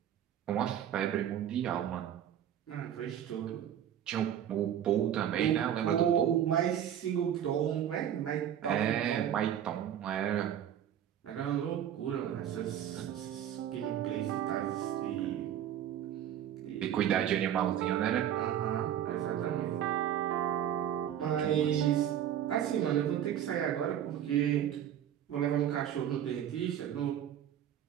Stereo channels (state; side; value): quieter; left; 10.3 dB